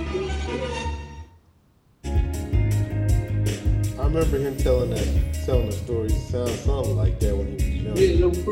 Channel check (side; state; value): both; identical; correlation 1.00